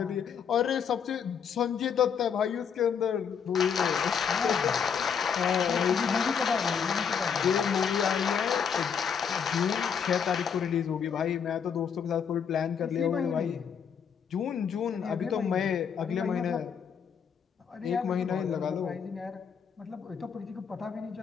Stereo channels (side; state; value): right; quieter; 7.1 dB